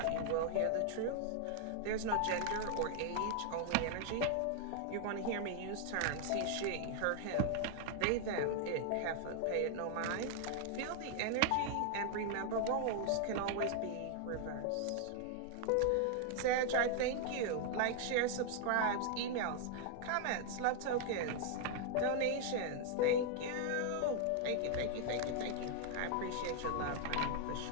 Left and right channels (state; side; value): different; both; correlation 0.00